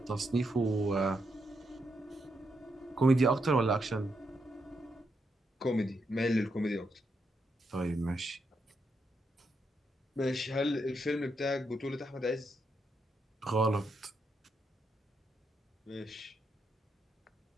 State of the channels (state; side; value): normal; both; correlation 0.81